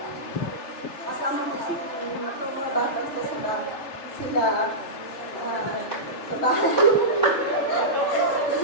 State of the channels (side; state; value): right; late; 3.2 ms